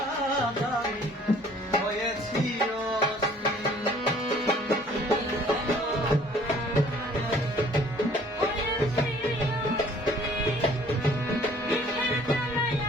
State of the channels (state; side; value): normal; both; correlation 0.55